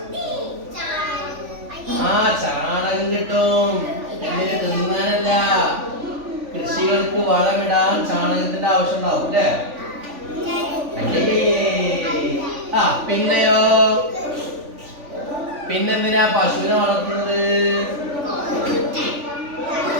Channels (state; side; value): late; left; 3.5 ms